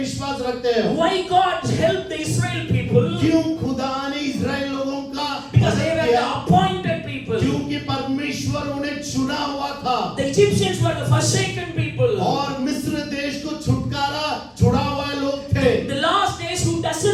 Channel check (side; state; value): both; identical; correlation 1.00